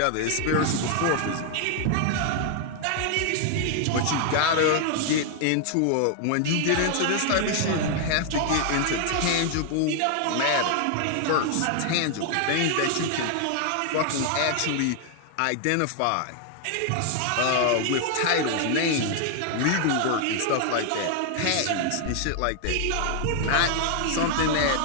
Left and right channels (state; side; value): different; both; correlation 0.00